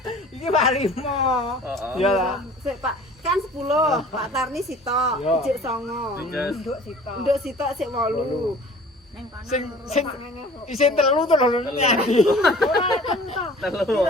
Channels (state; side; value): normal; both; correlation 0.47